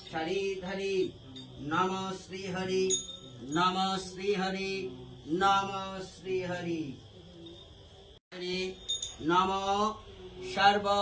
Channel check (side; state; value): both; identical; correlation 1.00